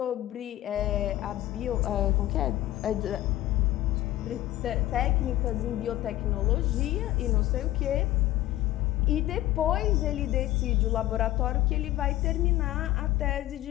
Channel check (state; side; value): quieter; right; 15.1 dB